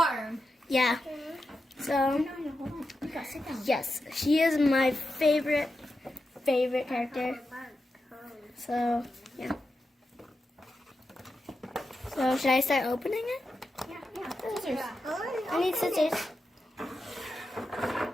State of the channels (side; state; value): both; normal; correlation 0.89